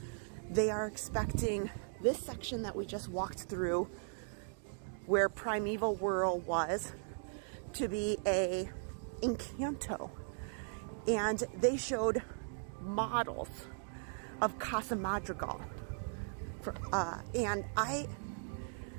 they are expecting this section that we just walked through, where Primeval World was, to be a Encanto. And they showed models of Casa Madrigal. And I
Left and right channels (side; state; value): left; silent; digital silence